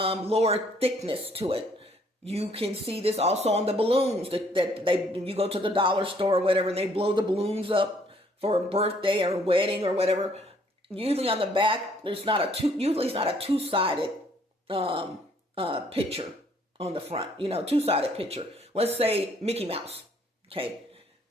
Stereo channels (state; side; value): normal; both; correlation 0.64